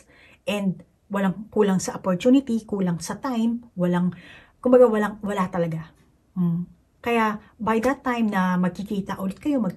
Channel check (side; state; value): both; identical; correlation 1.00